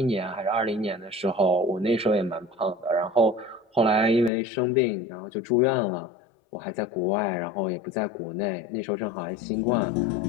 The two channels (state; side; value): drops out; right; at 4.3 s